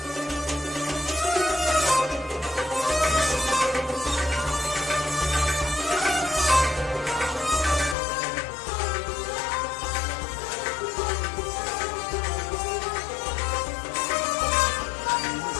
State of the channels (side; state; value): right; drops out; at 8.0 s